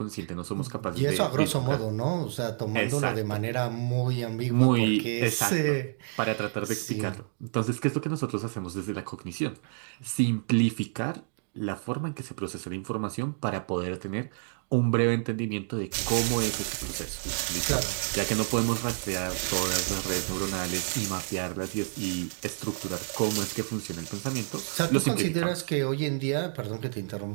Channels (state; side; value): silent; left; digital silence